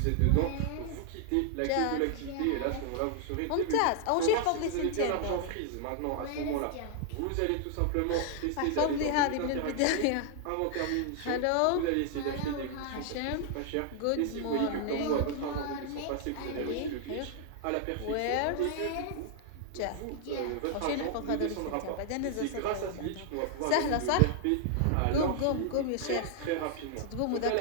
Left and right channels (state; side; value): different; both; correlation -0.01